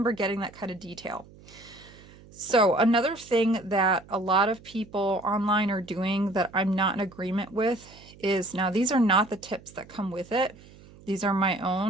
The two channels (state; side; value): noise; right; hum, 22 dB below the sound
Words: getting that kind of detail. So another thing that a lot of people online are doing that I'm not in agreement with is, now these are not the tips that come with it. These are my